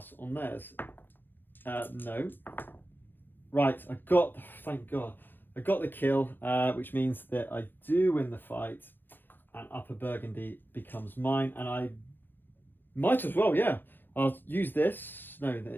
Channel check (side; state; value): right; late; 0.095 ms